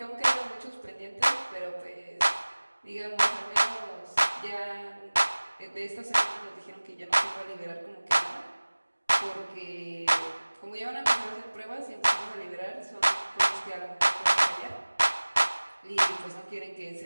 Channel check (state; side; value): inverted; both; correlation -1.00